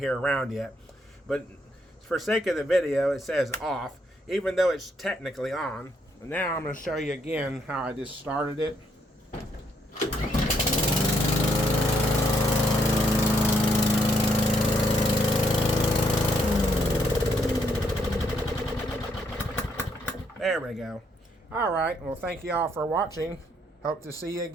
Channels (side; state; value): both; normal; correlation 0.73